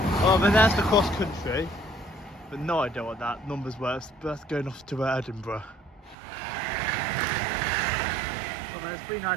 Oh, but there's the cross country. But no idea what that number's worth. But that's going off to Edinburgh. Well, there's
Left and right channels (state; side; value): drops out; left; at 6.2 s